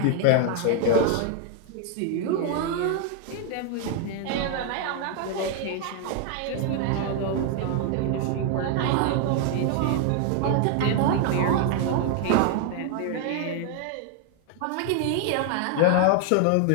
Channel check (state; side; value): different; both; correlation 0.00